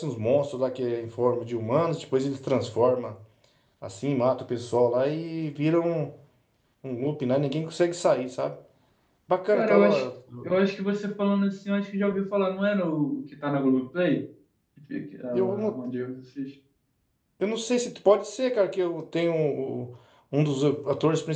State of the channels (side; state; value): both; identical; correlation 1.00